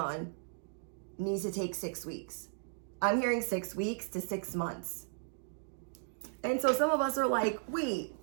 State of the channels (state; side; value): silent; left; digital silence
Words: needs to take 6 weeks. I'm hearing 6 weeks to 6 months. And so some of us are like, wait,